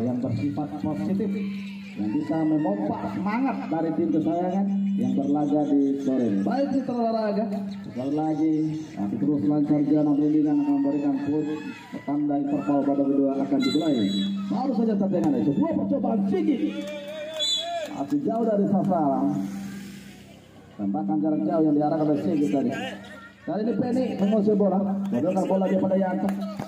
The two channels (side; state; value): both; identical; correlation 1.00